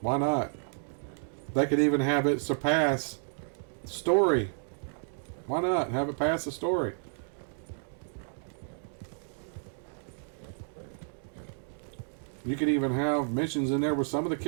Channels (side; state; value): left; silent; digital silence